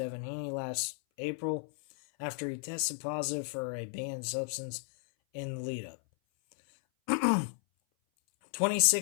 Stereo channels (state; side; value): silent; right; 56 dB below the other